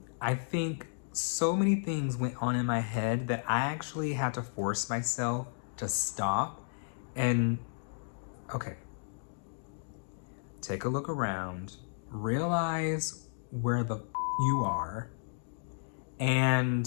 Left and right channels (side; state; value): right; silent; digital silence